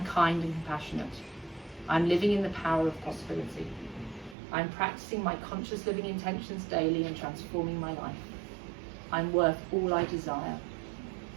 kind and compassionate. I am living in the power of possibility. I am practicing my conscious living intentions daily and transforming my life. I am worth all I desire.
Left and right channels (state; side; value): drops out; left; at 4.4 s